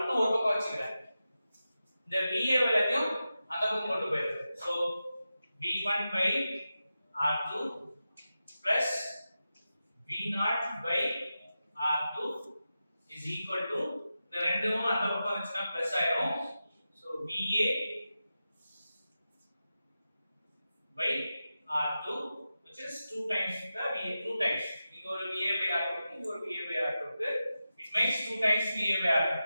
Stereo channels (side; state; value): both; inverted; correlation -0.92